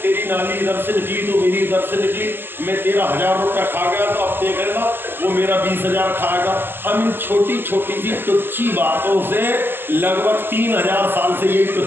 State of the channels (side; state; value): left; late; 0.10 ms